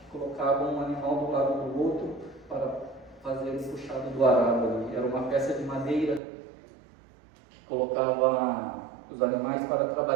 colocava um animal do lado do outro para fazer o puxado do arado ali. Era uma peça de madeira que colocava os animais para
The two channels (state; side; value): drops out; left; at 6.2 s